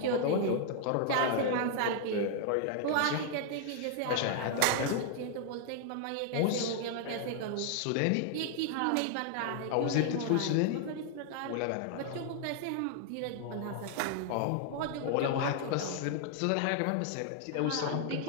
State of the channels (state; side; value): different; both; correlation 0.00